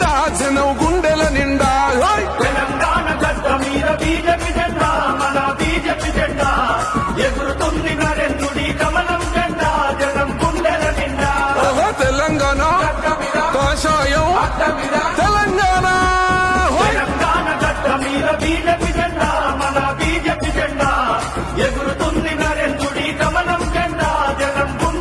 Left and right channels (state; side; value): identical; both; correlation 1.00